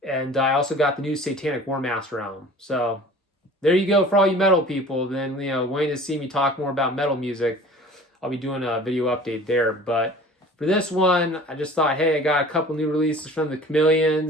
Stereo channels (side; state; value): both; normal; correlation 0.44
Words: And I also got the new Satanic War Master album. So there you go for all you metal people. Then, waiting to see me talk more about metal music, I'll be doing a video update there. But for this one, I just thought, hey, I got a couple new releases from the